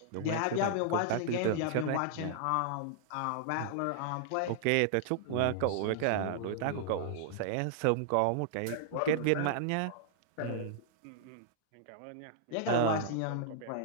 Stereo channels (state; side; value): different; both; correlation -0.01